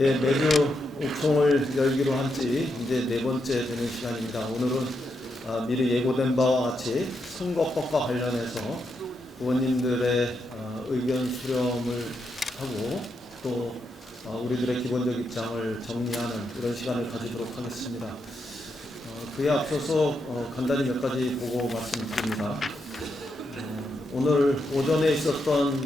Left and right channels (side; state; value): both; normal; correlation 0.82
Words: 매주 옥송을 열기로 한 지 이제 네 번째 되는 시간입니다. 오늘은 미리 예고된 바와 같이 선거법과 관련해서 의원님들의 의견 수렴을 하고 또 우리들의 기본적 입장을 정리하는 이런 시간을 가지도록 하겠습니다. 그에 앞서서 간단히 몇 가지 보고 말씀드립니다. 오늘 오전에